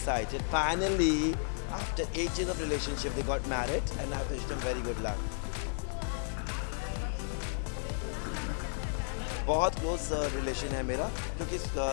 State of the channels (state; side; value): silent; right; 56 dB below the other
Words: finally after 8 years of relationship they got married and I wish them very good luck बहुत क्लोज रिलेशन है मेरा क्योंकि